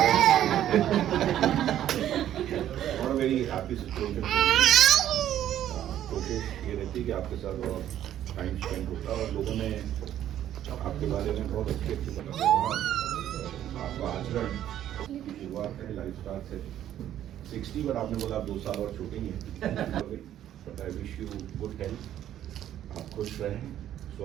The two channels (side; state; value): left; quieter; 11.5 dB